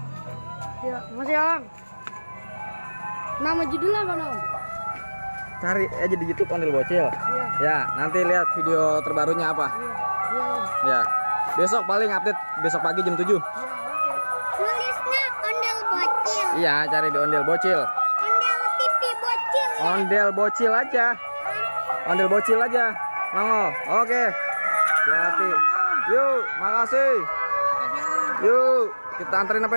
Ya, masih Om. Nama judulnya apa, Nom? Cari aja di YouTube Ondel Bocil. Iya. Ya, nanti lihat video terbarunya apa. Iya, Om. Ya. Besok paling update besok pagi jam 7. Iya, oke. Tulisnya Ondel Bocil. Iya, cari di Ondel Bocil. Ondel TV Bocil. Ondel Bocil aja. Ondel Bocil aja. Nongol. Oke. Hati-hati. Yuk, makasih. Yuk, kita anterin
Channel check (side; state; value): both; inverted; correlation -1.00